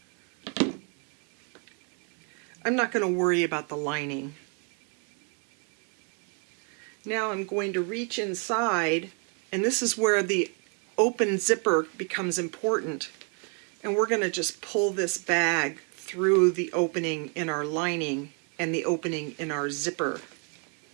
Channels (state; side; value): quieter; left; 39.3 dB